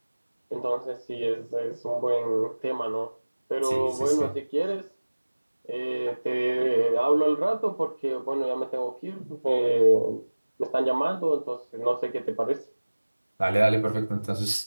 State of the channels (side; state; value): both; inverted; correlation -1.00